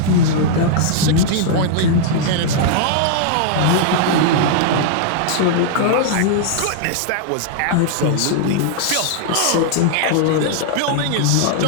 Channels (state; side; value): different; both; correlation -0.01